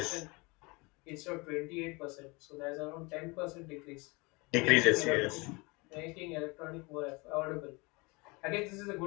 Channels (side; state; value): right; quieter; 26.6 dB